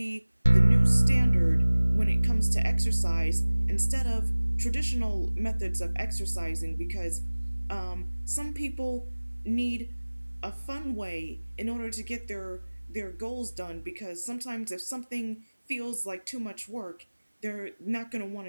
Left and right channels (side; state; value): both; inverted; correlation -1.00